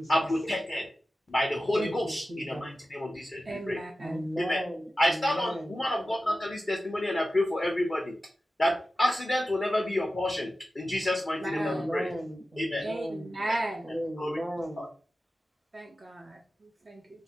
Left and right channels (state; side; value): normal; both; correlation 0.94